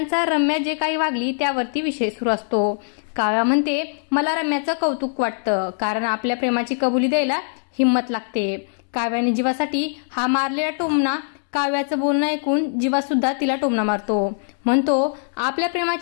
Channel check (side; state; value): right; silent; digital silence